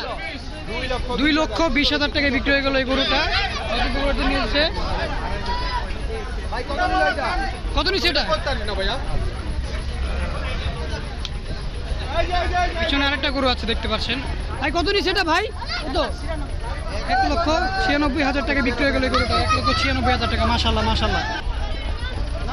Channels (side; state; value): both; identical; correlation 1.00